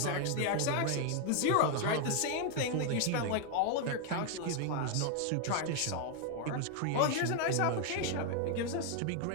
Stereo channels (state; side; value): different; both; correlation 0.01